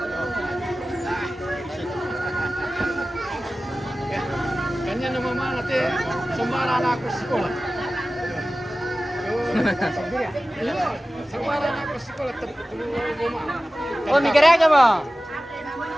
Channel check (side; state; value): both; normal; correlation 0.96